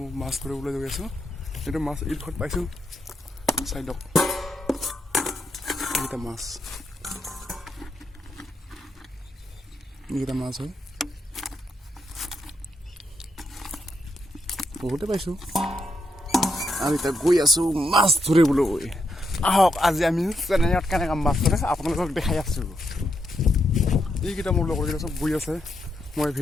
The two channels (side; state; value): both; normal; correlation 0.80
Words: মাছ ধৰিবলৈ গৈ আছো এটো মাছ ইডখত পাইছো চাইলো এটা মাছ হয় বহুতে পাইছো আমি তা গৈ আছো মাছ ধৰিবলৈ আহক আজি আমি চেন্নাইত কেনেকৈ মাছ ধৰে আপোনালোকক দেখাই আছো এইকেইটা মোৰ লগৰ কেইটা চব গৈ আছে মই